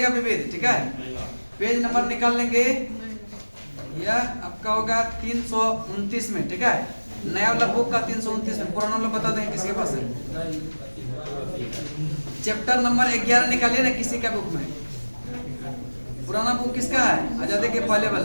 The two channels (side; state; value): both; inverted; correlation -1.00